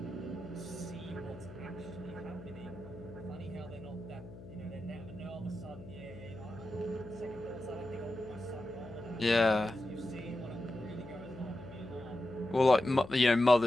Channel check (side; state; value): left; noise; hum, 15 dB below the sound